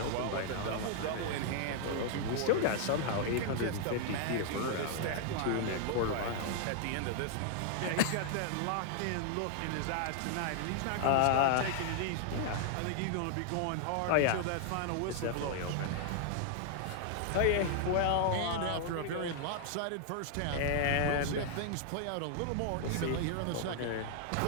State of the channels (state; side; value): different; both; correlation 0.00